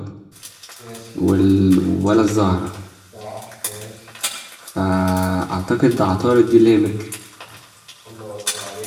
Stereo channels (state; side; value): identical; both; correlation 1.00